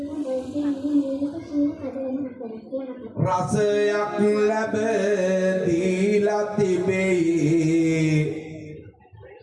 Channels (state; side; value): identical; both; correlation 1.00